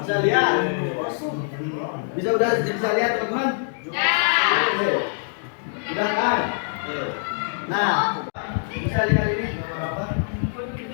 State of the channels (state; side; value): silent; right; digital silence